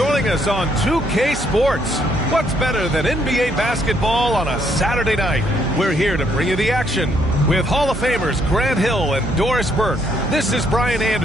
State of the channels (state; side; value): noise; right; hum, 10 dB below the sound